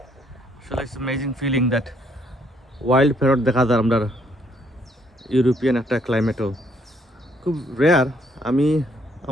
আসলে it's amazing feeling that wild parrot দেখা যায় আমরা ইউরোপিয়ান একটা ক্লাইমেটও খুব রেয়ার। আমি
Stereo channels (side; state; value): both; normal; correlation 0.68